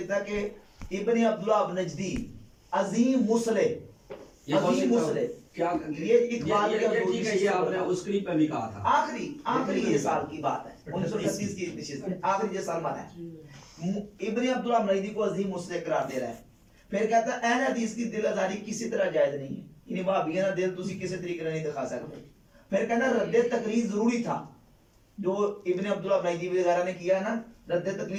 ہے کہ ابن عبداللہ نجدی عظیم مصلح، یہ عظیم مصلح، کیا یہ اقبال کے ٹھیک ہے، یہ آپ نے اس کلپ میں بھی کہا تھا. آخری یہ سال کی بات ہے، 1938 کی نشست ہے، آخری یہ سال مانا ہے. ابن عبداللہ نجدی کو عظیم مصلح قرار دے رہا ہے. پھر کہتا ہے اہل حدیث کی دل آزاری کسی طرح جائز نہیں ہے، یعنی وہابیوں کا دل تسی کسی طریقے نہیں دکھا سکتے. پھر کہنا رد تقلید ضروری تھا، جو ابن عبداللہ نجدی وغیرہ نے کیا نا، رد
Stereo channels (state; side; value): identical; both; correlation 1.00